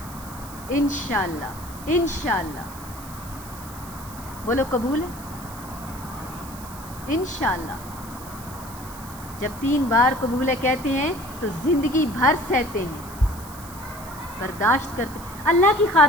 انشاءاللہ۔ بولو قبول ہے؟ انشاءاللہ۔ جب 3 بار قبول ہے کہتے ہیں تو زندگی بھر سہتے ہیں، برداشت کرتے ہیں۔ اللہ کی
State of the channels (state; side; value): noise; right; hiss, 16 dB below the sound